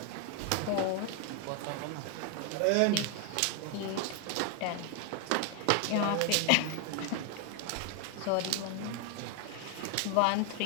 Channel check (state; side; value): different; both; correlation 0.01